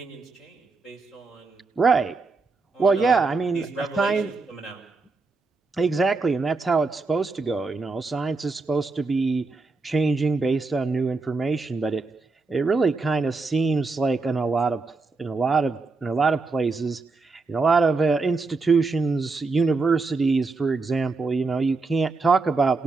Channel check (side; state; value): left; quieter; 3.8 dB